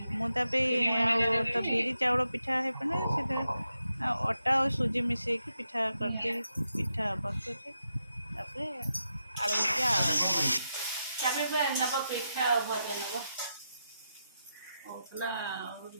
ମୁଁ ତା ପାଇଁ ଆଉ ତ ବିରି ଚାଉଳ ପିଠା ହେଇପାରେ ସେଇଟା ଅଟା ଆଉ ସୁଜି ମିଶାଇକି ପିଠା କରିଦେଇ ପିଠା ବସୁଛି ତାପରେ ଆଳୁ ଭଜା ତାପରେ ନେବ ପିଠା ଆଉ ଭଜା ନେବ କହୁଥିଲା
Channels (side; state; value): both; inverted; correlation -0.86